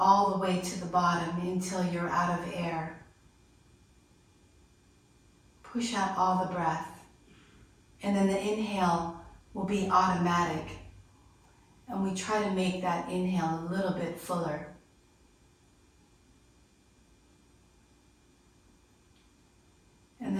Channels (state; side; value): identical; both; correlation 1.00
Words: the way to the bottom until you're out of air. Push out all the breath. And then the inhale will be automatic. And we try to make that inhale a little bit fuller. And